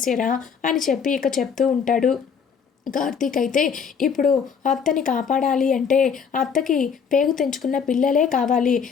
అని చెప్పి ఇక చెప్తూ ఉంటాడు. కార్తీక్ అయితే ఇప్పుడు అత్తని కాపాడాలి అంటే అత్తకి పేగు తెంచుకున్న పిల్లలే కావాలి,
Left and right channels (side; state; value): right; quieter; 6.6 dB